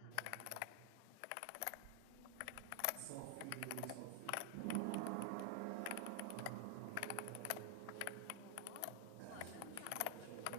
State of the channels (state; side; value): different; both; correlation 0.00